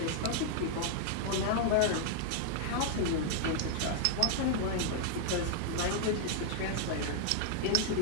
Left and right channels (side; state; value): both; different; correlation 0.00